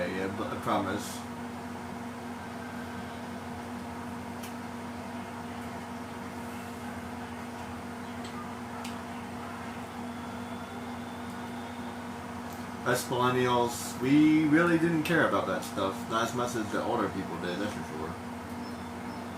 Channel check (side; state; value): both; identical; correlation 1.00